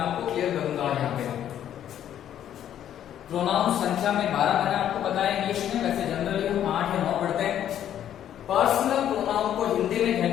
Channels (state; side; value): quieter; right; 10.6 dB